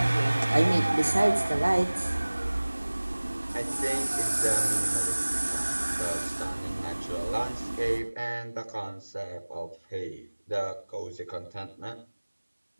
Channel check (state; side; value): inverted; both; correlation -1.00